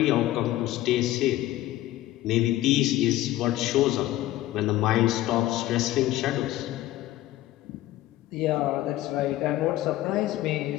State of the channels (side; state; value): right; quieter; 15.3 dB